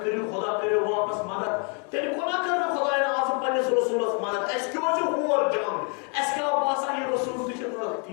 کٔرِو خۄدا کٔرِو واپس مدد تیٚلہِ کوٗتاہ کٔر نہٕ خۄداین آز پننِس رسوٗلس مدد اَسہِ کیٛاہ چھُ ہور جنگ اَسہِ کیٛاہ باسان یہِ رسوٗل تہِ چھُ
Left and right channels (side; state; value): right; quieter; 37.8 dB